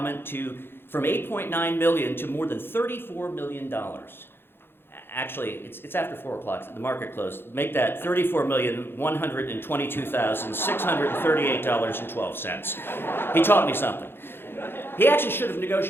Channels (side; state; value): right; late; 0.11 ms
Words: from $8.9 million to more than $34 million. Actually, it's after 4 o'clock, the market closed. Make that $34,122,638.12. He taught me something. He actually should have